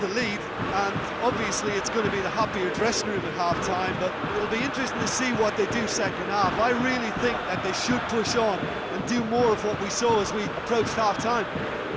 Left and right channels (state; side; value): identical; both; correlation 1.00